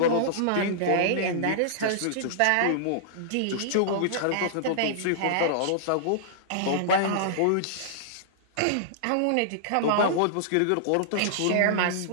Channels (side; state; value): both; different; correlation -0.02